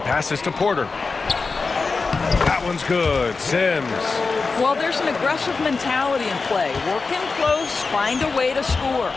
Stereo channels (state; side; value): quieter; right; 4.3 dB